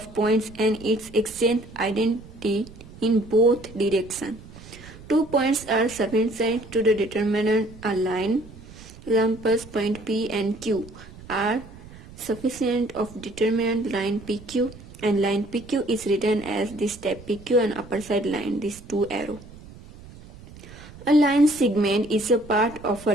points and its extent identity in both directions. 2 points are sufficient to determine a line. Examples, point P and Q are sufficient of determinant line PQ, and line PQ is written as this step PQ and upper side line, these two arrow. A line segment is a part of a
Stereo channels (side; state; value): right; noise; rumble, 18 dB below the sound